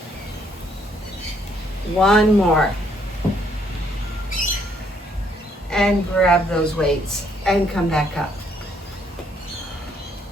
One more. And grab those weights and come back up.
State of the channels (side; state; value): both; normal; correlation 0.69